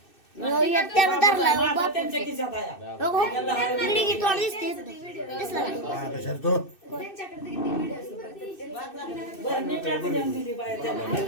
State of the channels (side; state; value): right; late; 2.6 ms